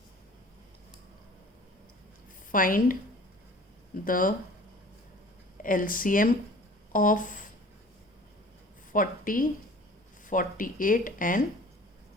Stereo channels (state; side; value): normal; both; correlation 0.47